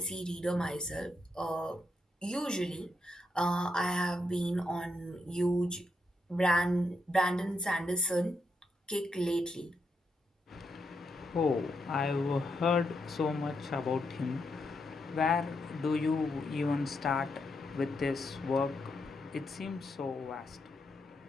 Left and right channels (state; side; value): normal; both; correlation 0.82